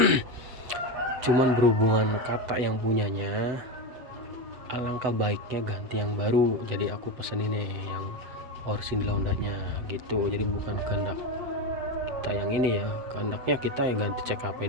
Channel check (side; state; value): left; late; 8.0 ms